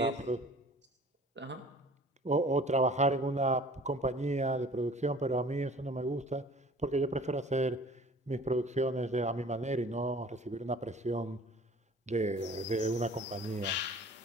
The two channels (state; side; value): normal; both; correlation 0.48